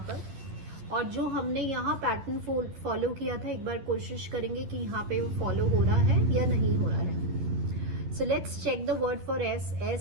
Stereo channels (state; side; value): late; left; 11 ms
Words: पर, और जो हमने यहाँ पैटर्न फॉलो किया था एक बार कोशिश करेंगे कि यहाँ पे वो फॉलो हो रहा है या नहीं हो रहा है। So let's check the word for S।